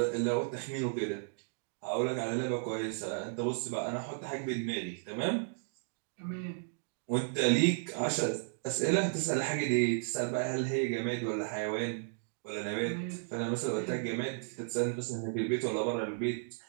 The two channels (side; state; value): left; silent; digital silence